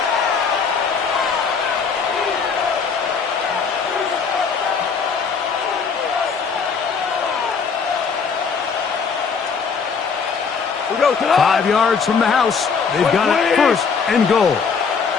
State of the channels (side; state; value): right; quieter; 5.6 dB